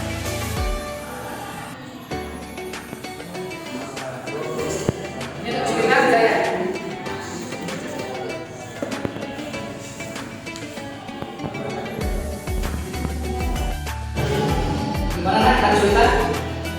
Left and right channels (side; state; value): both; identical; correlation 1.00